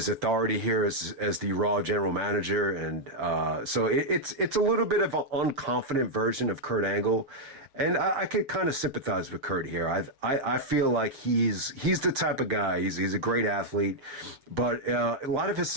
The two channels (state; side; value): late; left; 7.2 ms